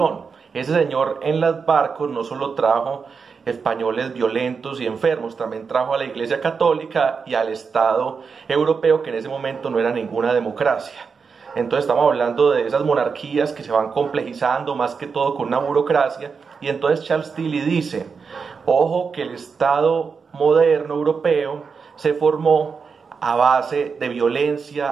Ese señor en los barcos no solo trajo españoles violentos y enfermos, también trajo a la Iglesia Católica y al Estado europeo, que en ese momento no era ninguna democracia. Entonces estamos hablando de esas monarquías que se van complejizando más que todo con una burocracia. Y entonces Charles Tilly dice, ojo que el Estado moderno europeo se formó a base de violencia,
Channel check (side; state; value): left; quieter; 5.5 dB